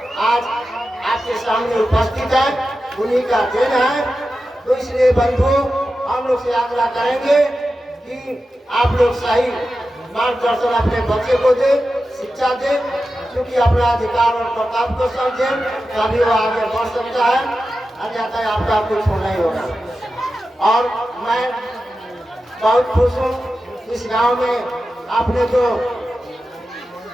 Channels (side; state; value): both; normal; correlation 0.92